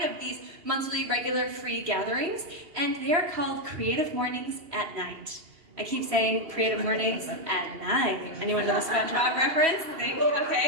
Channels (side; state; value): left; late; 3.1 ms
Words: of these monthly regular free gatherings, and they are called Creative Mornings at Night. I keep saying Creative Mornings at night. Anyone know the SpongeBob reference?